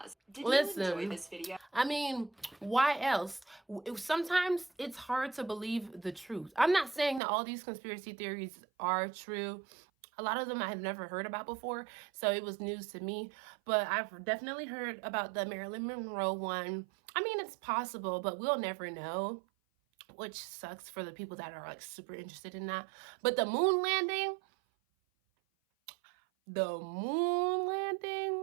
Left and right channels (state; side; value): drops out; left; at 7.2 s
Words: Did Listen, you enjoy this video? I mean, why else? Sometimes it's hard to believe the truth. I'm not saying that all these conspiracy theories are true. A lot of them I had never heard about before, so it was news to me. But I've definitely heard about the Marilyn Monroe one. I mean, it's possible, but we'll never know, which sucks for the people that are like super interested in that. But the moon landing,